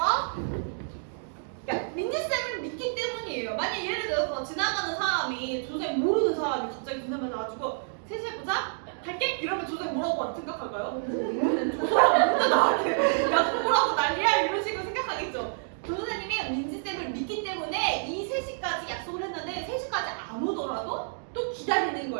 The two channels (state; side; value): silent; left; digital silence